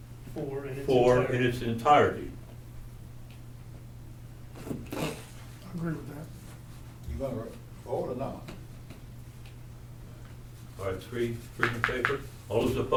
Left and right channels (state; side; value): identical; both; correlation 1.00